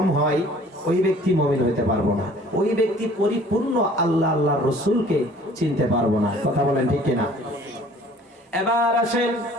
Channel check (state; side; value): normal; both; correlation 0.52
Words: হয়, ওই ব্যক্তি মুমিন হইতে পারবো না, ওই ব্যক্তি পরিপূর্ণ আল্লাহর রাসূলকে চিনতে পারবো না। কথা বলেন ঠিক কিনা? এবার আসেন,